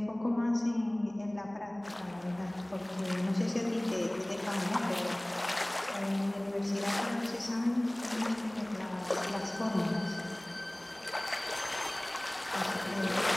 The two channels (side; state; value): right; noise; hum, 30 dB below the sound